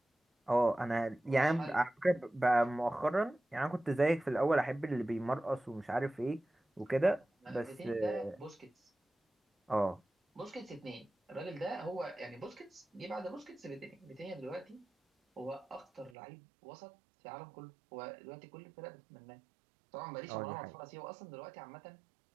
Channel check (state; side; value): drops out; left; at 16.1 s